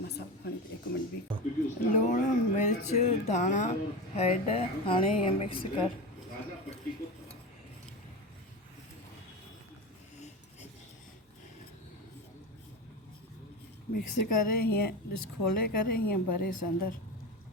मसालो खणी हिकु मिंट बि लूणु मिर्च धाणा हैड हाणे ईअं मिक्स कर मिक्स करे हीअं ॾिस खोले करे हीअं भरेसि अंदरि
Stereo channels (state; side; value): normal; both; correlation 0.23